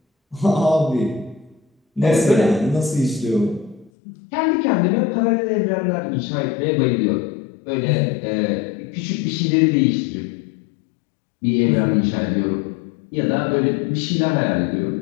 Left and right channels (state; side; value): drops out; right; at 3.9 s